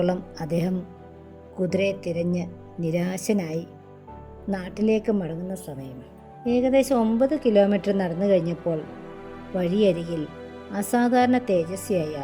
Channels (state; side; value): identical; both; correlation 1.00